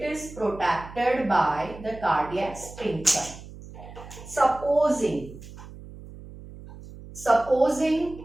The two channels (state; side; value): noise; right; hum, 16 dB below the sound